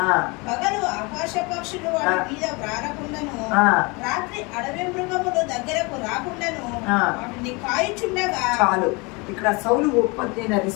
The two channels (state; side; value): quieter; right; 27.6 dB